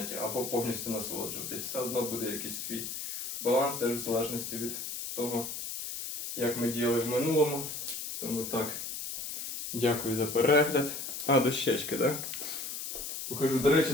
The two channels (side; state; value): left; noise; hiss, 6 dB below the sound